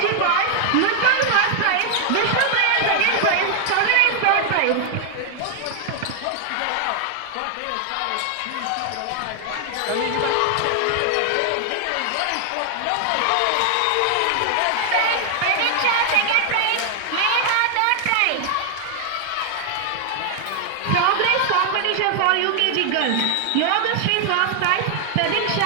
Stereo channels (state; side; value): different; both; correlation 0.00